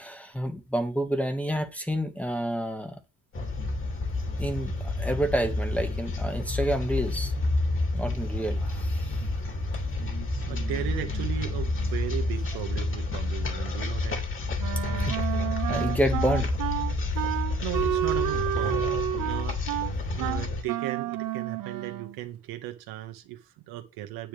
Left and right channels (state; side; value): normal; both; correlation 0.64